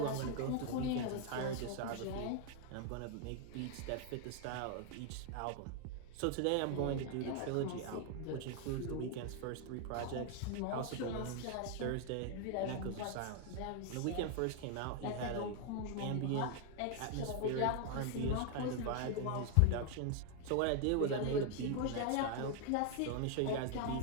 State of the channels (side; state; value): both; different; correlation 0.00